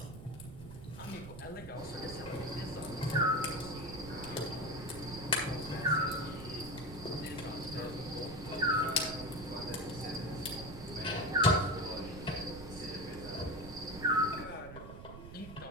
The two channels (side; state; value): right; noise; rumble, 12 dB below the sound